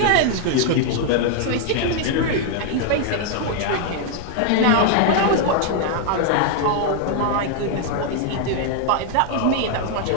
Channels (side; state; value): both; different; correlation 0.00